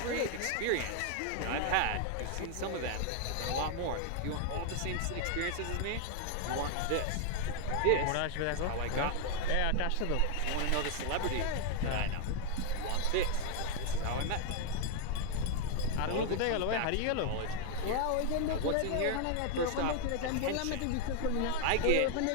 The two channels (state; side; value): different; both; correlation 0.00